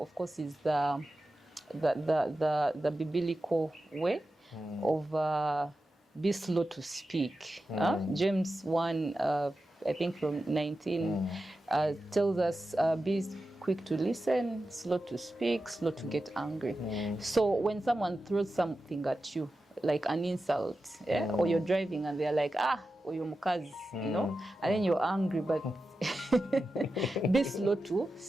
course, is the biblical way of be slow to speak. James 1, I think from 19, tells us be quick to listen, slow to speak, slow to get angry. So when someone throws something at you, like an insult, or you're driving and they're like, or you're mukazi, you know, and then you're angry, but be slow to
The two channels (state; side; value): normal; both; correlation 0.92